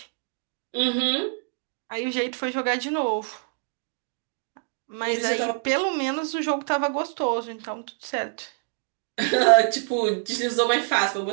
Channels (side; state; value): left; silent; 61 dB below the other